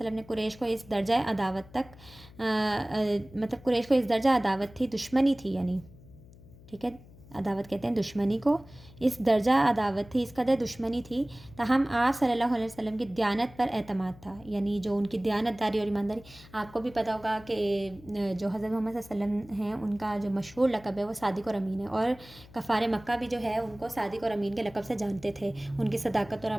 نے قریش کو اس درجہ عداوت تھی، دشمنی تھی، یعنی ٹھیک ہے، عداوت کہتے ہیں دشمنی کو. اس درجہ عداوت تھی، اس قدر دشمنی تھی، تاہم آپ صلی اللہ علیہ وسلم کی دیانت پر اعتماد تھا، یعنی جو ان کی دیانت داری اور ایمانداری. آپ کو بھی پتہ ہوگا کہ جو حضرت محمد صلی اللہ علیہ وسلم ہیں ان کا جو مشہور لقب ہے وہ صادق اور امین ہے، اور کفار مکہ بھی جو ہے ان کو صادق اور امین کے لقب سے جانتے تھے. ان کی صداقت اور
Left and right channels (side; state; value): left; noise; hum, 21 dB below the sound